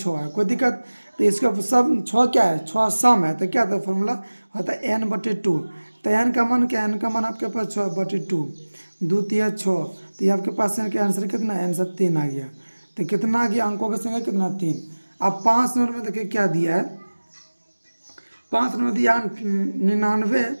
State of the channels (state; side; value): inverted; both; correlation -1.00